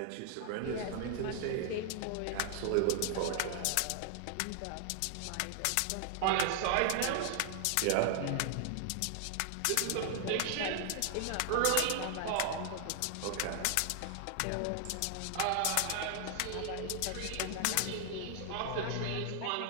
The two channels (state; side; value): different; both; correlation 0.00